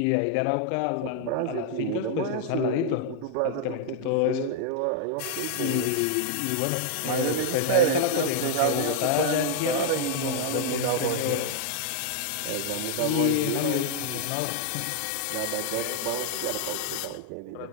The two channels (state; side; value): different; both; correlation 0.00